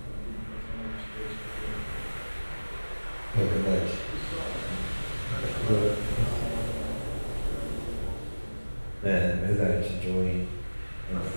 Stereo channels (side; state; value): both; inverted; correlation -1.00